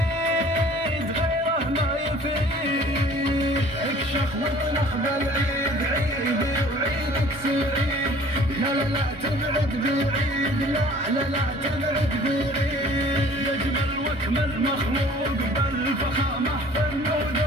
غيره ما يفيد. اكشخ واطنخ بالعيد عيدي وعيدك سعيد، لا لا لا تبعد بعيد، لا لا لا تبعد بعيد. يجمل واكمل مخلوق بالفخامة في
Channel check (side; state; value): both; normal; correlation 0.51